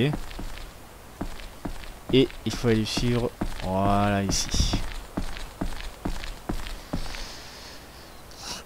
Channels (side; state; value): both; identical; correlation 1.00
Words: Et il faut aller suivre. Voilà, ici.